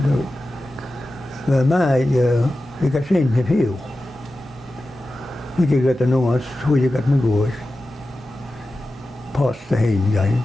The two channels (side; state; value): both; normal; correlation 0.93